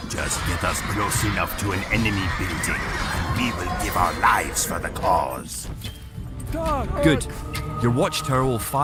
Just get us close enough to an enemy building, and we will give our lives for the cause. Good. Your watchtower will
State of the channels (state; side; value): identical; both; correlation 1.00